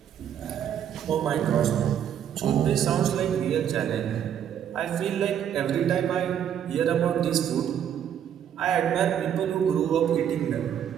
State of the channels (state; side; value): quieter; left; 9.4 dB